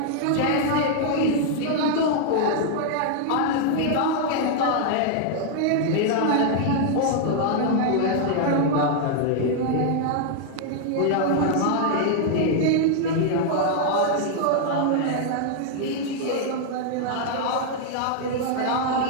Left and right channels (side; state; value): both; different; correlation 0.00